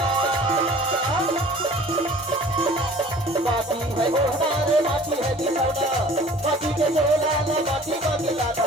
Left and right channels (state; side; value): normal; both; correlation 0.48